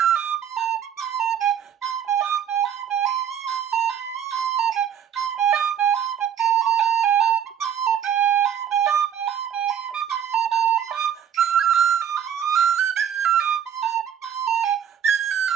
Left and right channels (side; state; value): left; quieter; 9.0 dB